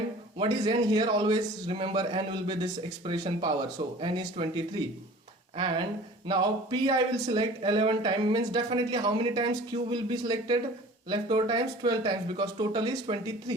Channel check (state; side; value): normal; both; correlation 0.44